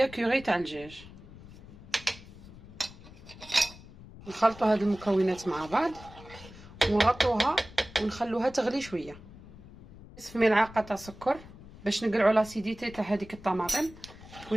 كوري تاع الدجاج. نخلطوا هاد المكونات مع بعض ونغطوها ونخلوها تغلي شويه. نصف ملعقه تاع سكر باش نقلعوا لاسيديتي تاع هذيك الطماطم،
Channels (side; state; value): left; noise; rumble, 18 dB below the sound